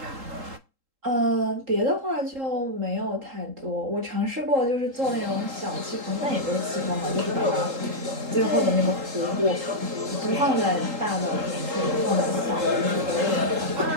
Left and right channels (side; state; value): left; late; 3.8 ms